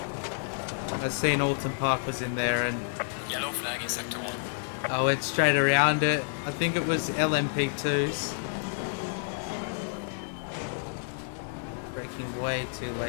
I seen Oulton Park was in there and Yellow flag in sector 1. I went straight around it. I think it was LMP2s. Braking way too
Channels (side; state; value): right; silent; digital silence